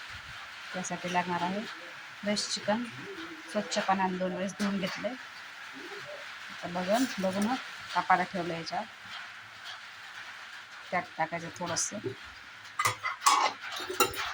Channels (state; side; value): identical; both; correlation 1.00